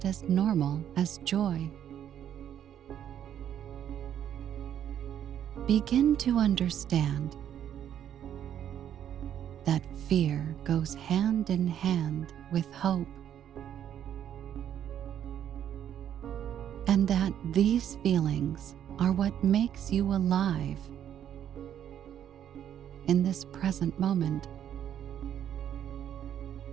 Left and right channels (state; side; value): quieter; left; 10.0 dB